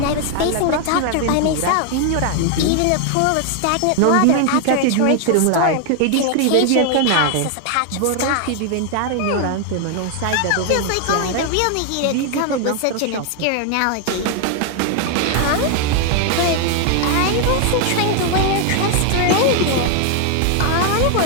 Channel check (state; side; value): different; both; correlation 0.00